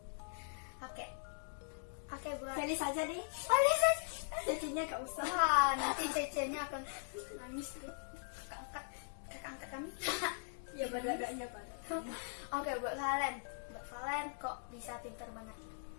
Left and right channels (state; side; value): silent; right; digital silence